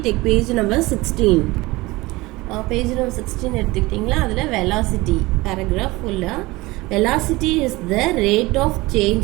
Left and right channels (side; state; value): left; quieter; 21.2 dB